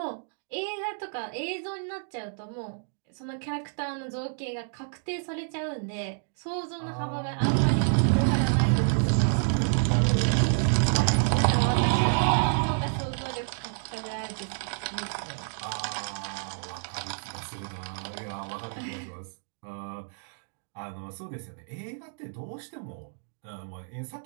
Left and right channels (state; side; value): silent; left; digital silence